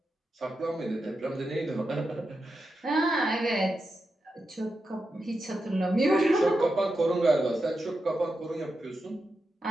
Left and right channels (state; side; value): normal; both; correlation 0.88